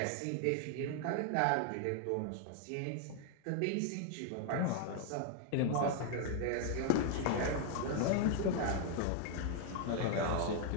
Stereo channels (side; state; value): both; different; correlation 0.00